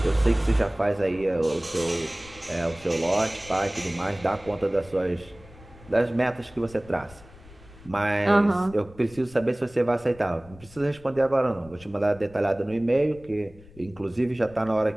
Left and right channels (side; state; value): left; noise; rumble, 22 dB below the sound